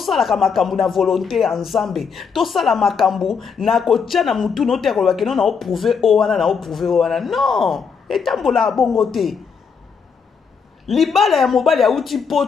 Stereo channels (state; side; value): quieter; right; 6.0 dB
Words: makambu na volonté ensemble to sala makambu na kotia na mutu no te kolobaki no na o prouver o wana non etambola bongo te libala ya mobali ya uti